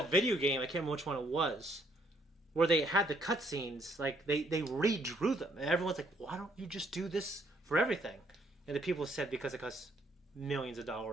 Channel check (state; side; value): normal; both; correlation 0.68